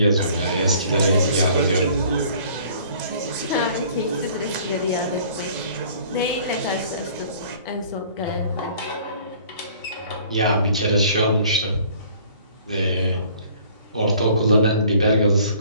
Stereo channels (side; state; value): both; inverted; correlation -0.54